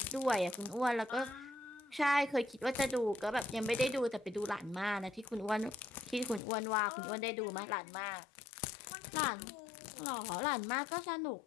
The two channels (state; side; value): drops out; right; at 6.4 s